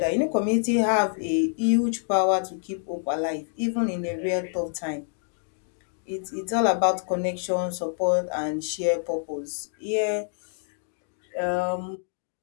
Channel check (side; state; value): right; silent; digital silence